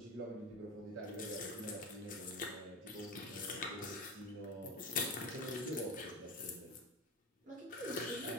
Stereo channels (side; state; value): both; normal; correlation 0.24